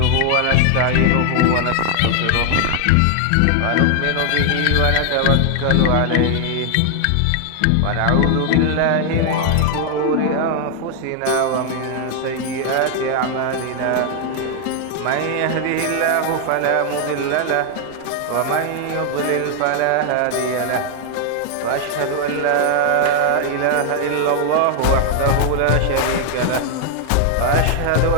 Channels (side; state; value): both; different; correlation 0.00